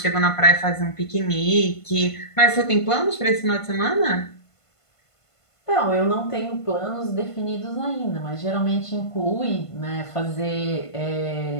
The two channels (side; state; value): right; late; 1.5 ms